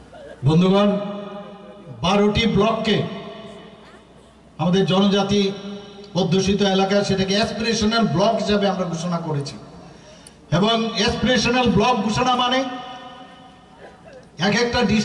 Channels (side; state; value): both; identical; correlation 1.00